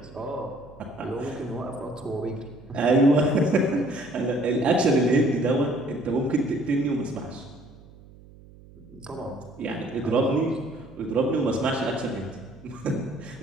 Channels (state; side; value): noise; right; hum, 22 dB below the sound